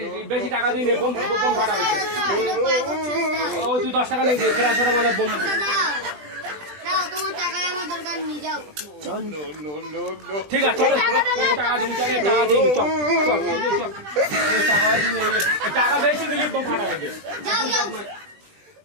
বেশি টাকা দিয়ে বোম ফাটাবে। ও তুই 10 টাকা নিয়ে প্যারাসিটামলের বোম। না তোমার টাকা আমার দরকার নিয়ে যাও। ঠিক আছে, চল টাকা দিবি, চল টাকা বেশি দিলে বোম ফাটাবে। যাও যাও,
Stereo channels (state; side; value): late; left; 20 ms